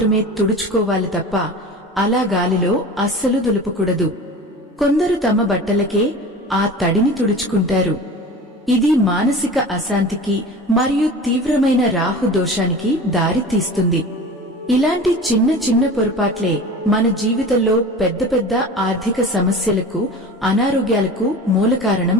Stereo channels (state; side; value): normal; both; correlation 0.36